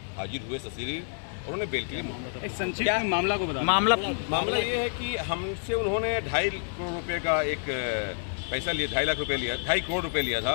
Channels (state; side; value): silent; right; digital silence